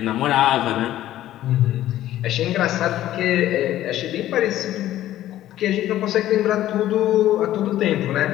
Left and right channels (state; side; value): quieter; right; 13.5 dB